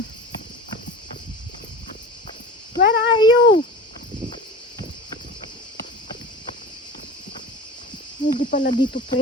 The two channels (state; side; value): normal; both; correlation 0.35